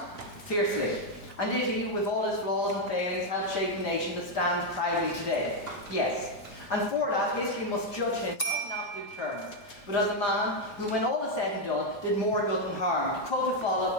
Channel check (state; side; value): late; right; 4.9 ms